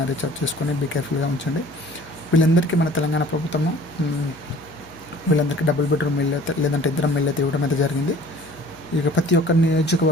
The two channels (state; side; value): noise; left; hum, 26 dB below the sound